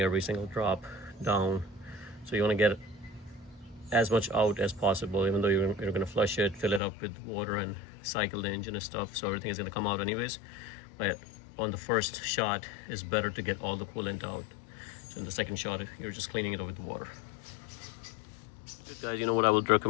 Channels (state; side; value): drops out; right; at 6.8 s